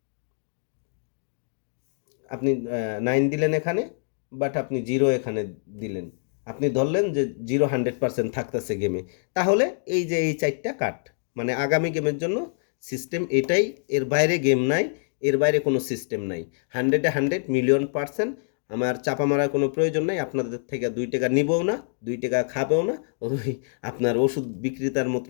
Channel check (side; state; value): right; silent; digital silence